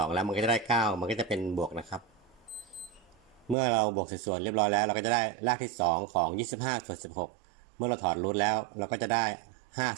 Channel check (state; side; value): drops out; left; at 3.6 s